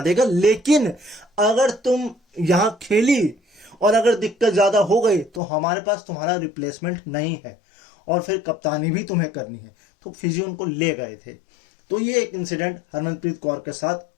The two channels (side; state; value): right; drops out; at 5.4 s